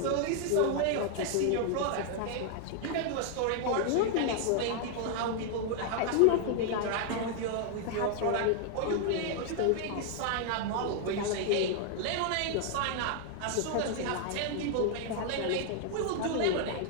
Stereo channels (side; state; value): both; different; correlation 0.00